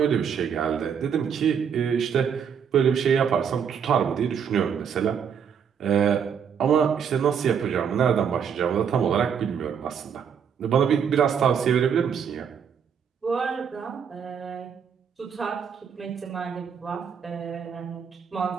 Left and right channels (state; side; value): quieter; left; 7.4 dB